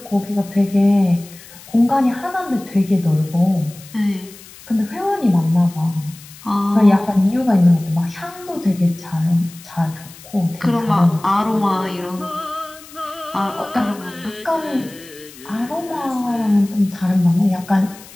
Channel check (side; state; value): left; noise; hiss, 20 dB below the sound